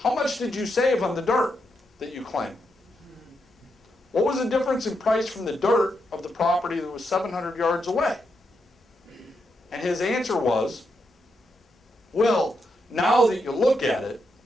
much did you save on the dirt that you claim? What was the difference in price from the dirt of the property that was 700 yards away? And his answer was, well, now that you look at it,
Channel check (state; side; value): normal; both; correlation 0.82